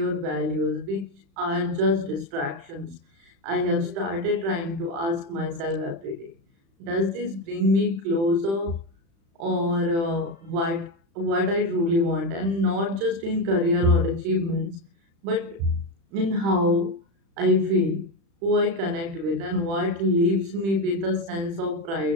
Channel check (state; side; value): late; left; 36 ms